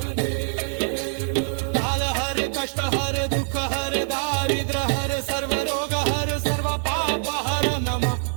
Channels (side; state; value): left; silent; digital silence